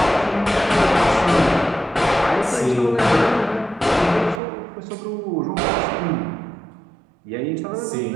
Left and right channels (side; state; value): left; drops out; at 4.4 s